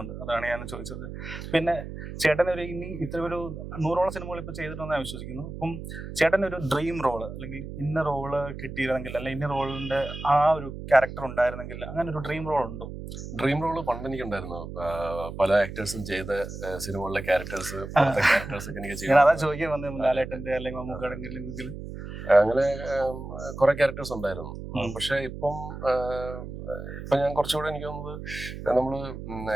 അതാണ് ഞാൻ ചോദിച്ചത്. പിന്നെ ചേട്ടൻ ഒരു ഇനി ഇത്ര ഒരു 100ഓളം സിനിമകൾ ഇപ്പൊ ചെയ്തിട്ടുണ്ടെന്ന് ഞാൻ വിശ്വസിക്കുന്നു. അപ്പം ചേട്ടൻ ഒരു ഡ്രീം റോള് അല്ലെങ്കിൽ ഇന്ന റോള് കിട്ടിയിരുന്നെങ്കിൽ അല്ലെങ്കിൽ ഇന്ന റോളിന്റെ ആ ഒരു ക്യാരക്ടർ ഉണ്ടായിരുന്നെങ്കിൽ അങ്ങനെ ഒരു ഡ്രീം റോൾ ഉണ്ടോ? ഡ്രീം റോള് പണ്ട് എനിക്കുണ്ടായിരുന്നു. പല ആക്ടേഴ്സും ചെയ്ത സിനിമകളിലെ ക്യാരക്ടേഴ്സ് ഒക്കെ എനിക്ക് ചെയ്യാം. അതാ ചോദിക്കാൻ വന്നത്. ലാലേട്ടന്റെ അല്ലെങ്കിൽ മമ്മൂക്കാണെങ്കിൽ അങ്ങനെ കുറെ ക്യാരക്ടേഴ്സ് ഉണ്ടായിരുന്നു. പക്ഷെ ഇപ്പം ഞാൻ കുറച്ചുകൂടെ എനിക്ക് തോന്നുന്നത് നമ്മള്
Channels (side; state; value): right; noise; hum, 9 dB below the sound